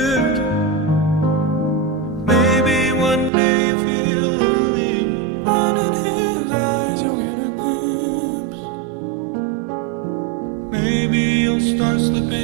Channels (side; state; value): left; drops out; at 3.3 s